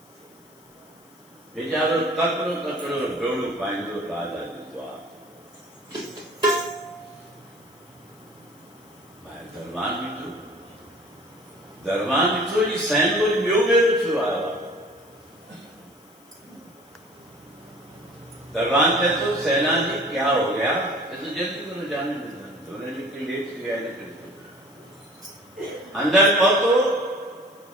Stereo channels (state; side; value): noise; left; hiss, 28 dB below the sound